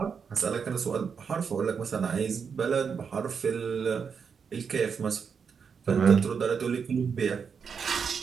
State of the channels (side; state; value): left; quieter; 6.3 dB